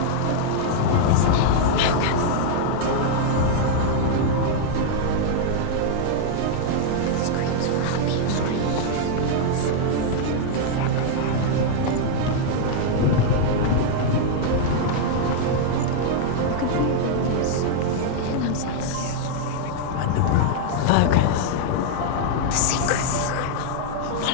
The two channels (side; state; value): both; different; correlation -0.01